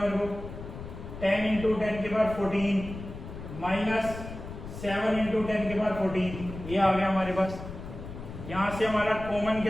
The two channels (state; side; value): noise; left; rumble, 11 dB below the sound